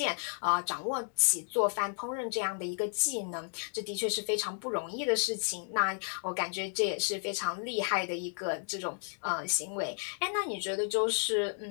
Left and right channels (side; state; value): right; silent; 56 dB below the other